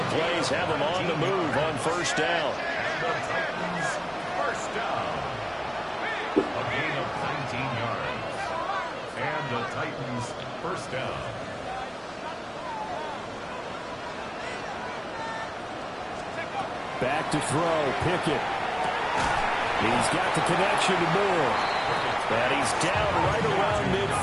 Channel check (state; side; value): identical; both; correlation 1.00